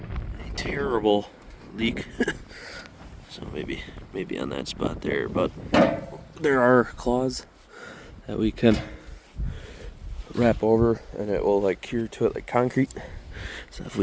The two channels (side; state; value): both; identical; correlation 1.00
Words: terrible leak. So maybe on that spot there, but there are claws that we can wrap over and it will like cure to it like concrete. So if